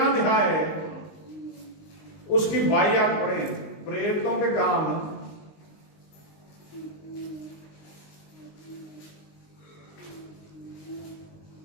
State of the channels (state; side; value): late; right; 19 ms